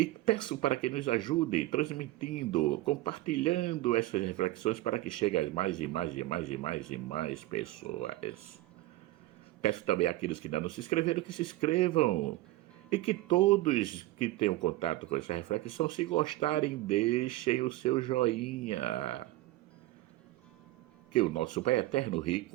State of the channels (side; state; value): left; quieter; 17.2 dB